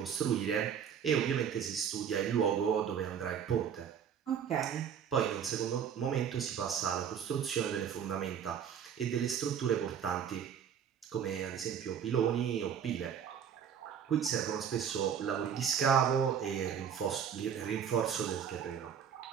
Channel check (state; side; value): quieter; left; 8.1 dB